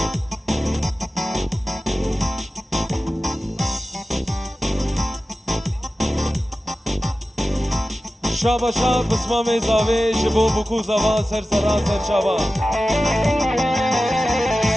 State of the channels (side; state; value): both; normal; correlation 0.94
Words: شابا شاب بسمام زاوی جبو بکو زوا سر سرا سر شابا